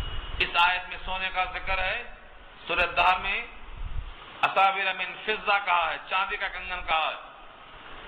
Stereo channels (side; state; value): both; identical; correlation 1.00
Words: اس آیت میں سونے کا ذکر ہے، سورۃ الدہر میں اساور من فضہ کہا ہے، چاندی کا کنگن کہا ہے،